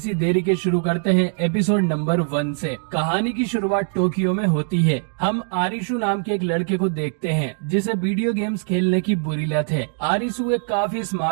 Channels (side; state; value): left; silent; 57 dB below the other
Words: देरी के शुरू करते हैं एपिसोड नंबर 1 से। कहानी की शुरुआत टोक्यो में होती है। हम आरिशु नाम के एक लड़के को देखते हैं जिसे वीडियो गेम्स खेलने की बुरी लत है। आरिशु एक काफी